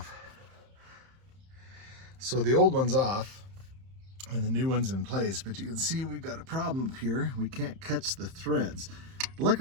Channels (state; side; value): late; left; 31 ms